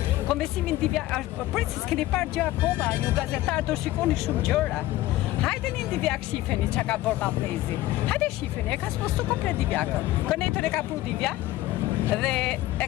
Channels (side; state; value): right; quieter; 16.2 dB